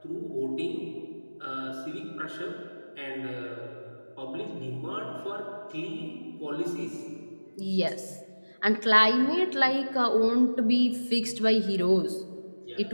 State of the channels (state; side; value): inverted; both; correlation -1.00